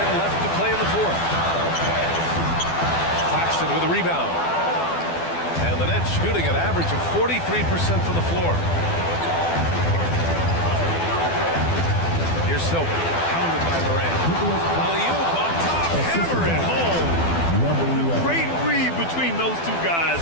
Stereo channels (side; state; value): right; late; 12 ms